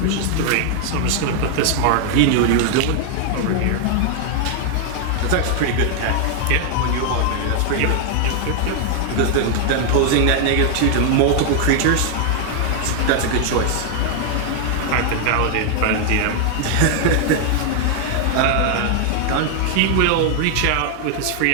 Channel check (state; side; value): different; both; correlation 0.00